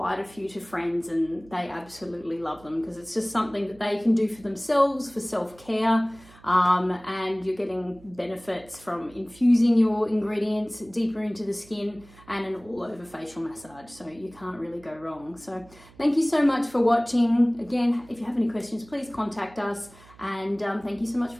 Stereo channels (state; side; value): noise; right; hum, 24 dB below the sound